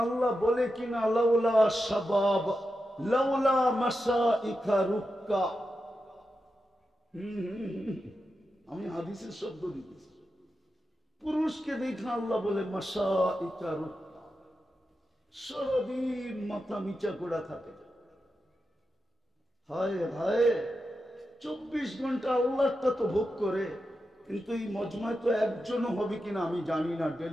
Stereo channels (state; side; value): normal; both; correlation 0.89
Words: আল্লাহ বলে কিনা লাউলা শাবাব লাউলা মাসাইকা রুক্কা। আমি হাদিসের শব্দ দিতেছি। পুরুষকে দেখা আল্লাহ বলে মাসাইকা রুক্কা, সারাদিন মাথা নিচা করা থাকে। হায় হায়, 24 ঘন্টা আল্লাহটা তো ভোগ করে, কিন্তু এই মজমায় তো একজনও হবে কিনা আমি জানি না